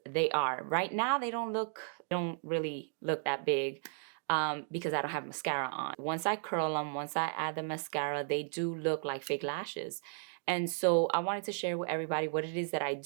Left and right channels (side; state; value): left; silent; digital silence